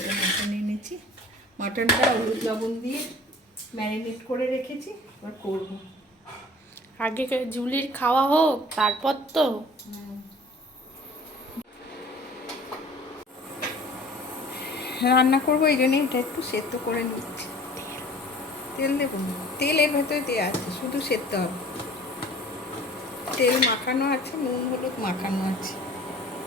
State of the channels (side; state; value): both; normal; correlation 0.47